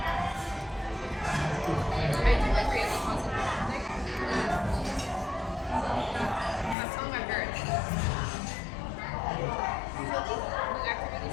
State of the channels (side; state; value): right; drops out; at 6.8 s